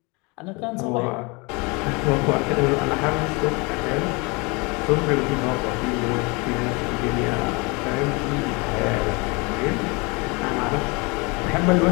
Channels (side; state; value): right; quieter; 28.5 dB